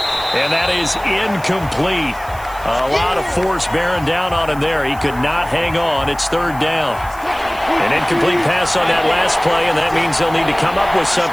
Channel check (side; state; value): right; noise; hiss, 21 dB below the sound